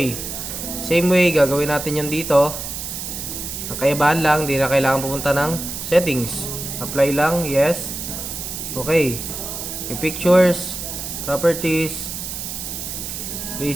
Same way, gagawin natin yun dito. Ang kaibahan lang, di na kailangan pupunta ng settings. Apply lang, yes. Okay. Yung pictures, properties,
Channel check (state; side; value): noise; right; hiss, 6 dB below the sound